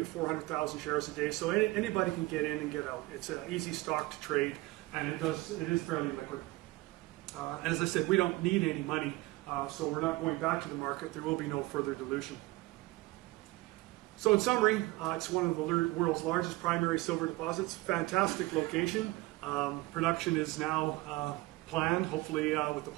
to 400,000 shares a day. So anybody can get in and get out. It's an easy stock to trade, and it is fairly liquid. And as I said, we don't need any money, so we're not going back to the market. There will be no further dilution. So in summary, it's one of the world's largest primary silver deposits. Fantastic location. Production is now planned, hopefully with the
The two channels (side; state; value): left; quieter; 20.5 dB